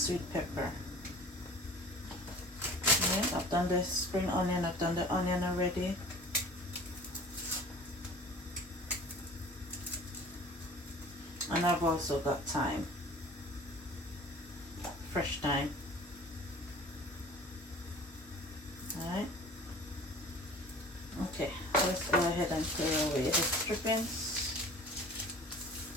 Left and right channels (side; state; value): both; normal; correlation 0.44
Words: pepper. Okay, I've done the spring onion, I've done the onion already. And I've also got thyme, fresh thyme. Alright. Okay, let's go ahead and clear away the strippings.